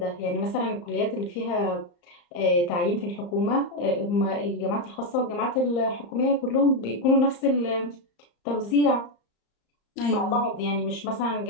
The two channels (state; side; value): late; right; 34 ms